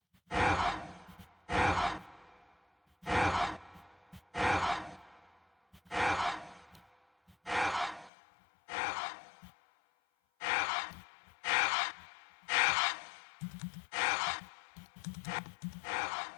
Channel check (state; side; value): drops out; right; at 8.1 s